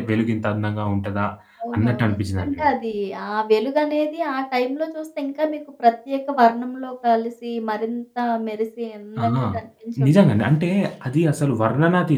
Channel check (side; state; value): both; identical; correlation 1.00